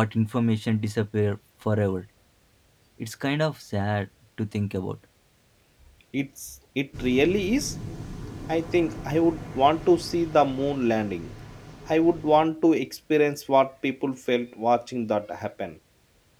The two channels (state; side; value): identical; both; correlation 1.00